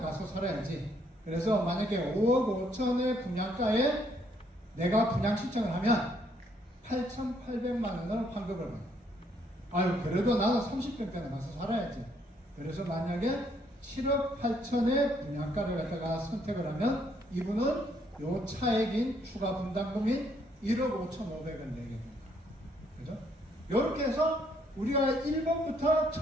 살아야지. 그래서 만약에 5억 5천의 분양가에 내가 분양 신청을 하면 8,800만 원을 환급을 받아. 그래도 나는 30평대나 가서 살아야지. 그래서 만약에 7억 8천의 분양가를 갖다가 선택을 하면 이분은 요 차액인 추가 분담금인 1억 5,500을 내게 됩니다. 그죠? 이렇게 해서 우리가 1번부터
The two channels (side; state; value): both; normal; correlation 0.69